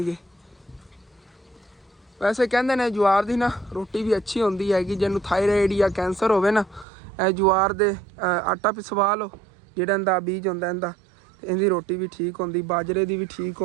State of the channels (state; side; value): drops out; left; at 6.9 s